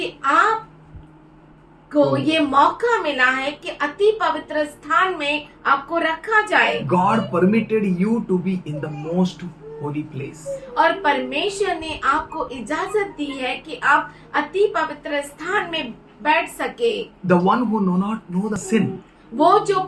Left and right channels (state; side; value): identical; both; correlation 1.00